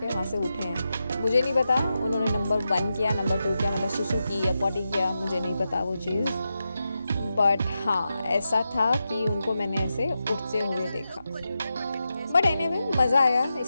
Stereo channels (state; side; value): inverted; both; correlation -0.89